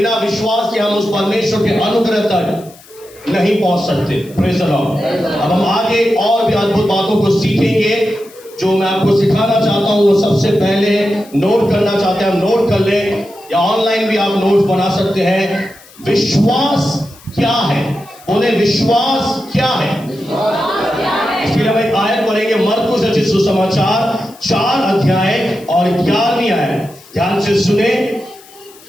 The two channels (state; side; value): noise; left; hiss, 24 dB below the sound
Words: विश्वास के हम उस परमेश्वर के अनुग्रह तक नहीं पहुंच सकते। Praise the Lord. अब हम आगे और भी अद्भुत बातों को सीखेंगे। जो मैं आपको सिखाना चाहता हूं वो सबसे पहले नोट करना चाहते हैं, हम नोट कर लें, या ऑनलाइन भी आप नोट्स बना सकते हैं। विश्वास क्या है? बोले, विश्वास क्या है? इसके लिए हम एक आयत पढ़ेंगे, मरकुस रचित सुसमाचार 4 अध्याय और 11वीं आयत। ध्यान से सुने,